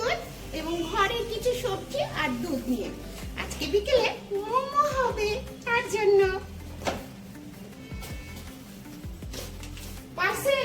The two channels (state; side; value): identical; both; correlation 1.00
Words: এবং ঘরের কিছু সবজি আর দুধ নিয়ে। আজকে বিকেলে মোমো হবে, তার জন্য